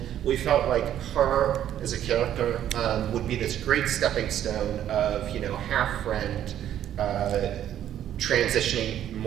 We felt like her as a character would be this great stepping stone of, half friend, transitioning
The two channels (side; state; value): left; quieter; 11.0 dB